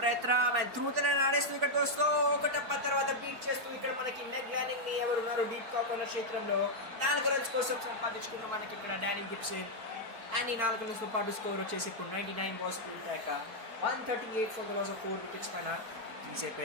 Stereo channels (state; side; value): late; left; 4.5 ms